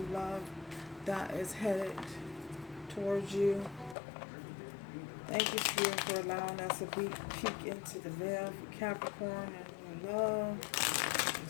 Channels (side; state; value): right; drops out; at 4.0 s